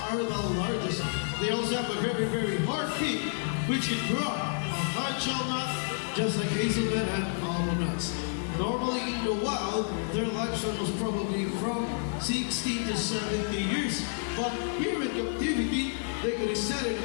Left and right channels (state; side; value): silent; right; digital silence